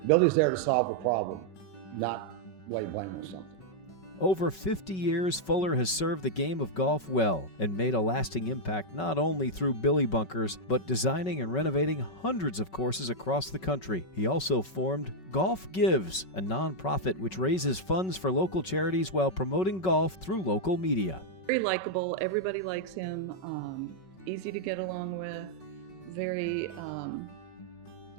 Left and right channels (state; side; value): late; right; 5.3 ms